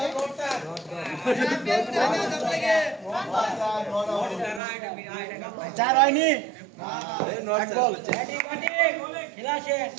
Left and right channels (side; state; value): left; drops out; at 4.6 s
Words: চার হয়নি, এক বল, খেলা শেষ।